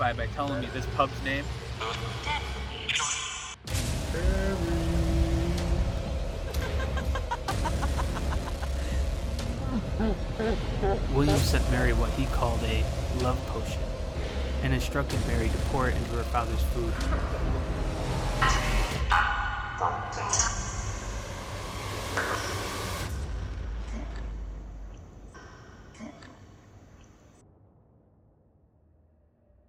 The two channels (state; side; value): identical; both; correlation 1.00